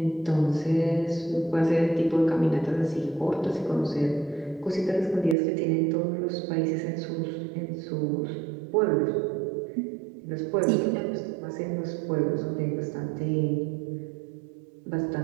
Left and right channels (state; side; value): drops out; left; at 5.4 s